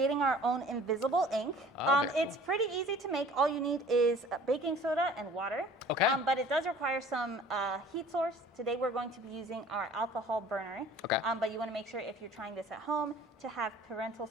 our own invisible ink. Okay. It's pretty easy to make. All you need is baking soda and water. Okay. But it does require some heat source. Today we're going to be using our alcohol burner. Okay. But you want to make sure if you're trying this at home to have parental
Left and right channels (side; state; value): both; normal; correlation 0.49